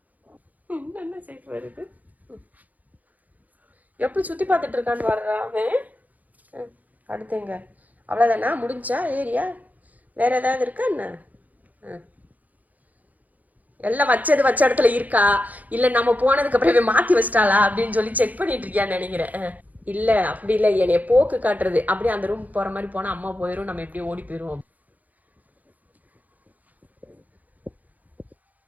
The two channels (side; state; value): left; late; 0.079 ms